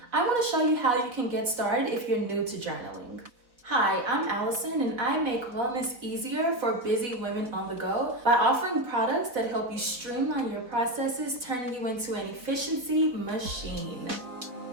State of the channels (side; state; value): left; late; 3.9 ms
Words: I want to show you how you can get started if you're new to journaling. Hi, I'm Allison, and I make wellness easier for busy women on the go by offering products that help you streamline your processes, turning you into an efficiency machine.